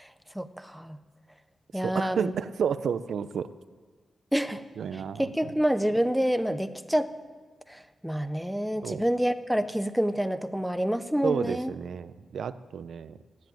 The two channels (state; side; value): normal; both; correlation 0.95